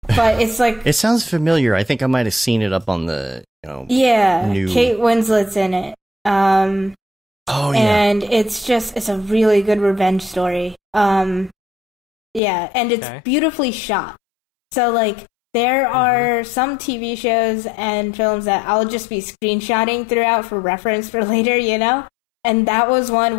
But it's like... It sounds familiar. I think I might have seen it up on the, new... Kate Winslet's in it. And it's a really good revenge story. And it's beautifully shot. So, like, there are some TV shows and films that I'll just be screenshotting throughout for reference for later, And that was one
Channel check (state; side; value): drops out; right; at 12.4 s